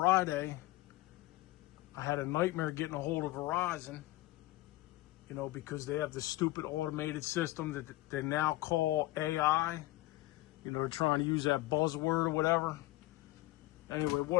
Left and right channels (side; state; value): right; quieter; 18.5 dB